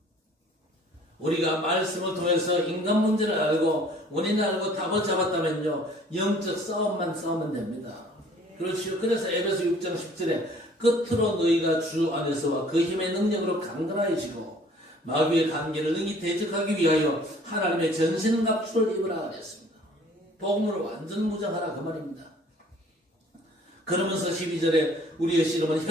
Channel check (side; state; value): both; normal; correlation 0.54